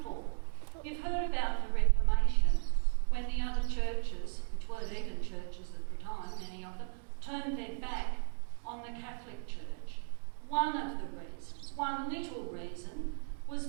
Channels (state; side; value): silent; left; 54 dB below the other